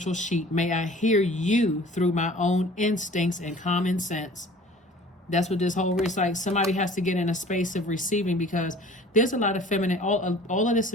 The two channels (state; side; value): normal; both; correlation 0.47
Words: sheep. May I hear you through my own instincts and common sense. That's what this whole is like. Somebody has to get in a space of receiving, because there's a lot of feminine, all of this